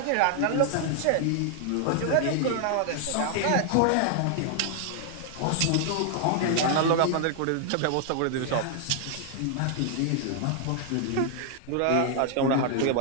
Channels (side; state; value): both; different; correlation 0.00